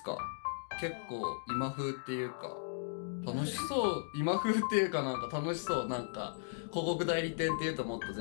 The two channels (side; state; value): right; silent; digital silence